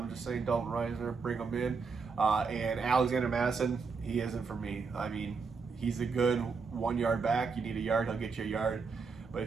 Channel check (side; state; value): left; quieter; 5.0 dB